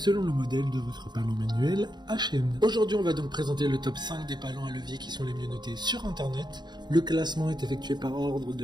le modèle de votre palan manuel à chaîne. Aujourd'hui, on va donc présenter le top 5 des palans à levier qui sont les mieux notés sur internet. Le classement est effectué par ordre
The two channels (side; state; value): left; late; 0.21 ms